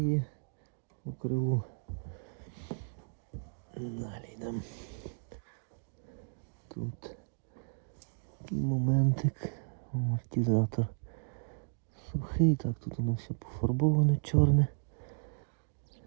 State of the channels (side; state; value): left; silent; digital silence